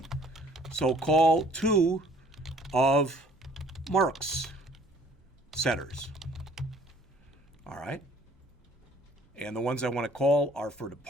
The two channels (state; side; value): normal; both; correlation 0.56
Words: So call 2 of Mark's setters. All right. And the ones I want to call are for